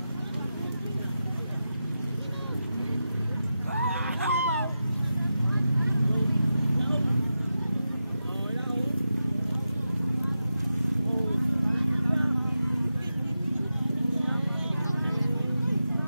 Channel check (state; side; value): inverted; both; correlation -0.91